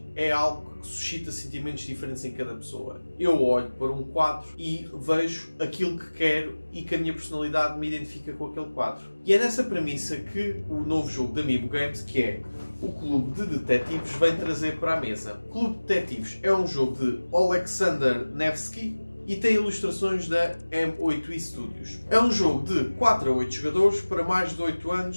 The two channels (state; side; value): inverted; both; correlation -1.00